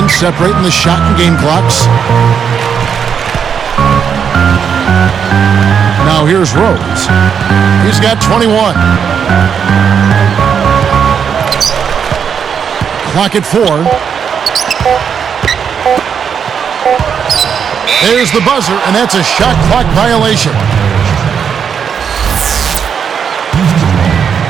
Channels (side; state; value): left; quieter; 7.3 dB